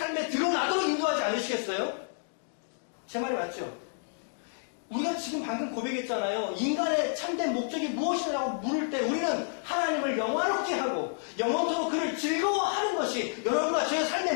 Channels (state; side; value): silent; right; digital silence